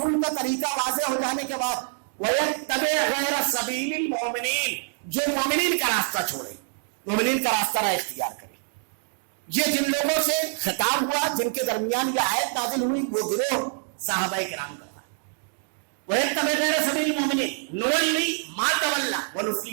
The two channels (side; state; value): left; silent; 61 dB below the other